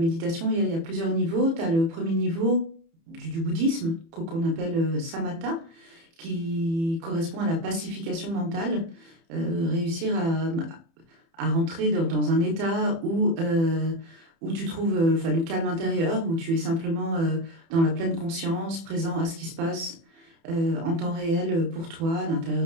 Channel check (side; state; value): left; late; 30 ms